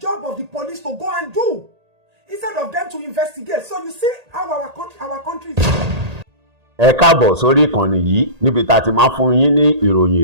of the police to go and do, instead of them to investigate. So you see how our country is. Ẹ káàbọ̀ sórí ìkànnì yìí níbi tá a ti máa fún yín ní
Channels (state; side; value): late; left; 1.8 ms